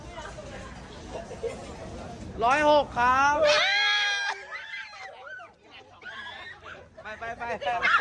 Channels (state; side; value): identical; both; correlation 1.00